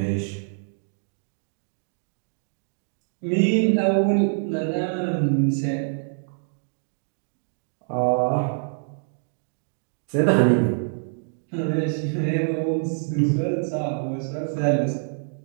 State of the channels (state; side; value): silent; left; digital silence